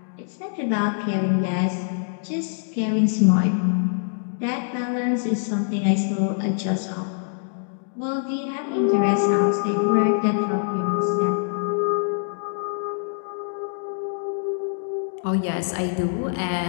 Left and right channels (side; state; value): right; silent; digital silence